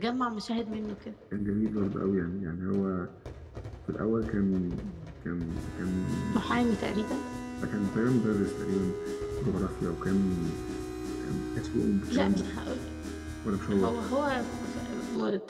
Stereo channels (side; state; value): both; identical; correlation 1.00